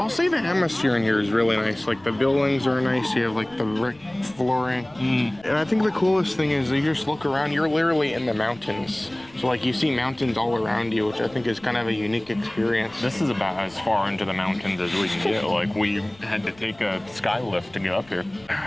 say the atmosphere in here is really nice. Like the buildings are nice. You have like the brick flooring. And I think the coolest thing is you just look around, you're literally in the mountains. So like you see mountains all around you, which I think is kind of a unique experience. This is about as far into the mountains as we can get. Like we had to take a sky lift to get up here.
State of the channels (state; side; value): noise; left; rumble, 26 dB below the sound